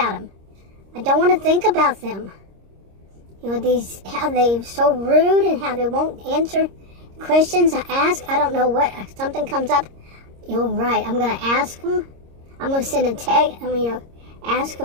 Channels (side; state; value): left; late; 26 ms